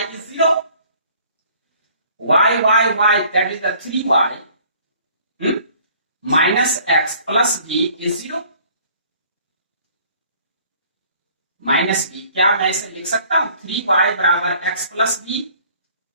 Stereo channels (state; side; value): inverted; both; correlation -0.56